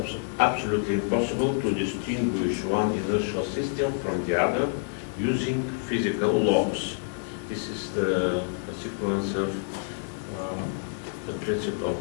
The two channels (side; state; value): right; silent; digital silence